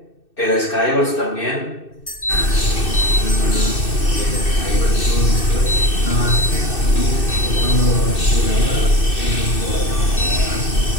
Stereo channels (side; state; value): right; late; 2.6 ms